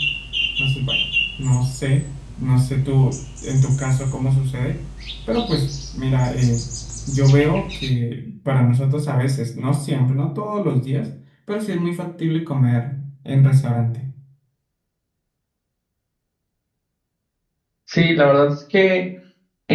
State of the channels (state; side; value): identical; both; correlation 1.00